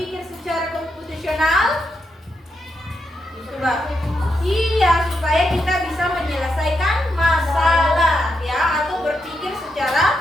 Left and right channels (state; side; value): normal; both; correlation 0.83